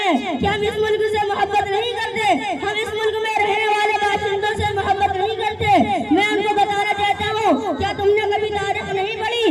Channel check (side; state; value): both; identical; correlation 1.00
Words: कि हम इस मुल्क से मोहब्बत नहीं करते, हम इस मुल्क में रहने वाले बाशिंदों से मोहब्बत नहीं करते, मैं उनको बताना चाहता हूँ, क्या तुमने कभी तारीख नहीं